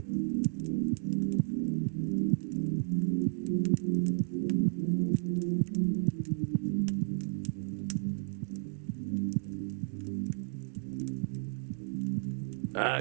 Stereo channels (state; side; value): silent; left; digital silence